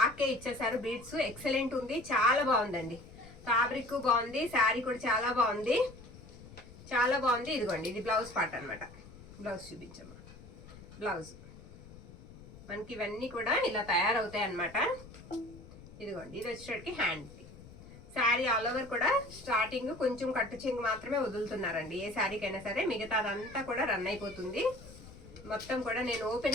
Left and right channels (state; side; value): noise; left; rumble, 18 dB below the sound